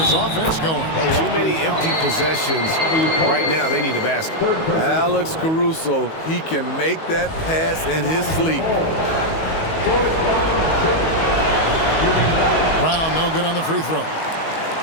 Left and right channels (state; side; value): late; right; 19 ms